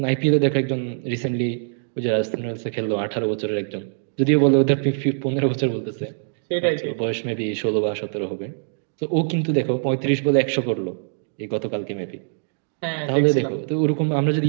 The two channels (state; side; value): silent; left; digital silence